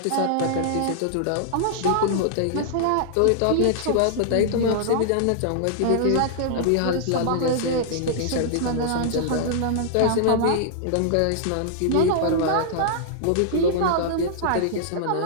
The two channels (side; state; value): both; different; correlation -0.01